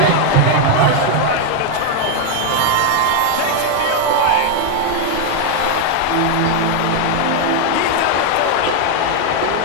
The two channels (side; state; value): both; different; correlation 0.01